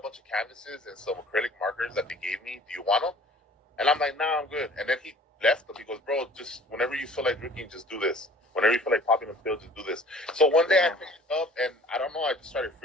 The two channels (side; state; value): both; normal; correlation 0.49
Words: bunch of canvases and some acrylic markers that they gave me. Do you want them? And I'm like, nah, I'm good. And then he left them. He goes, bro, just whenever you feel like drinking, just do this. Whenever you feel like popping a pill, just do this. So one day I picked it up, and I don't know, I just started